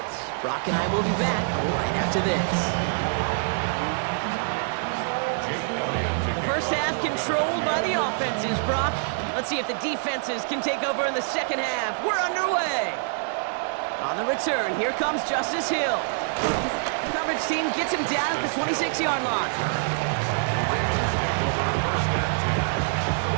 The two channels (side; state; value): left; silent; digital silence